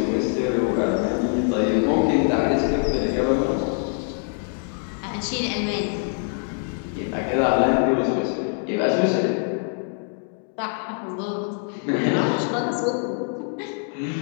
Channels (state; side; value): silent; right; 55 dB below the other